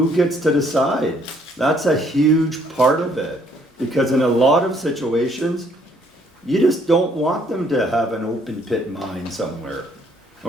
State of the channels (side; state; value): both; normal; correlation 0.65